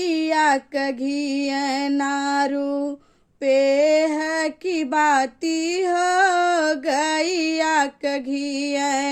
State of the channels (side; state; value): both; identical; correlation 1.00